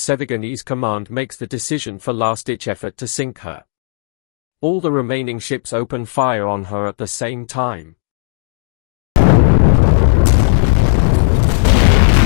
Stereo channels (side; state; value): right; silent; digital silence